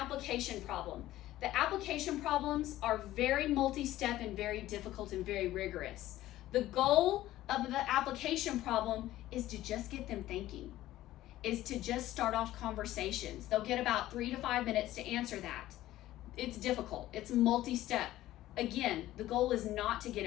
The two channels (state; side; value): quieter; right; 14.9 dB